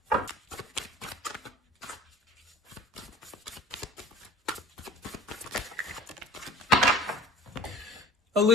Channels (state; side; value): normal; both; correlation 0.42